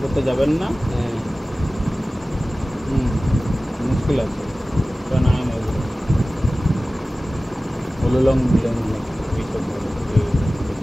করতে যাবেন না। হ্যাঁ, মুশকিল আছে, ওটা না হয় না। হলুলং বিলং এইসব বলে।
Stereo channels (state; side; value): normal; both; correlation 0.97